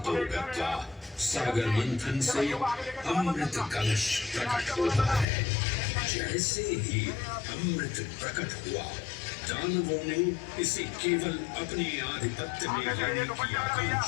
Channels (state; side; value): drops out; right; at 5.2 s